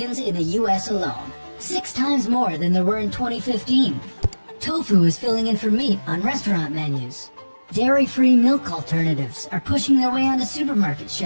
in the US alone, 6 times more than there were in 2015. Tofu is filling in for meat on restaurant menus. Dairy-free milk alternatives are pushing their way onto supermarket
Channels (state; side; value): inverted; both; correlation -1.00